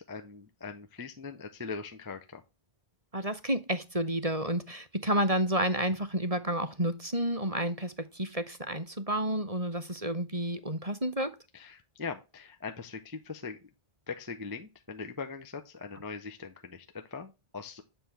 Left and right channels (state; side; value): late; left; 1.7 ms